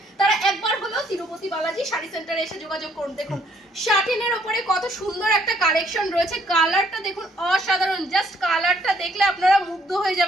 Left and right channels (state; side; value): normal; both; correlation 0.66